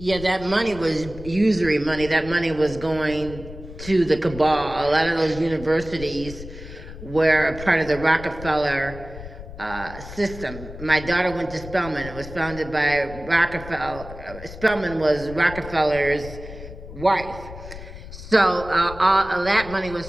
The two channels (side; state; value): left; noise; rumble, 13 dB below the sound